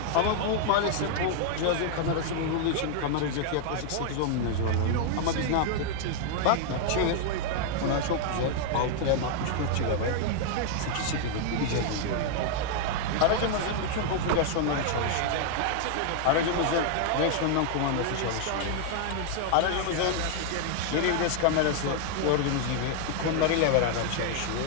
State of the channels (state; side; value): different; both; correlation 0.00